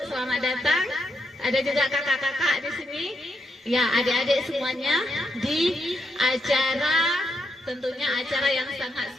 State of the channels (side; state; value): both; normal; correlation 0.81